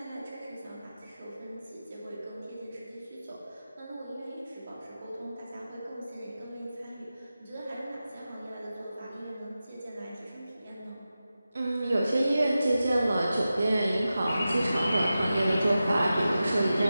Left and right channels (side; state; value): both; inverted; correlation -0.93